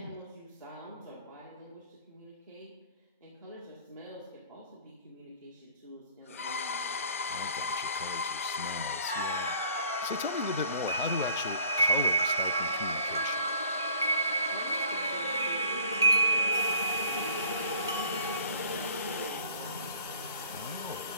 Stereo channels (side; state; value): both; inverted; correlation -0.54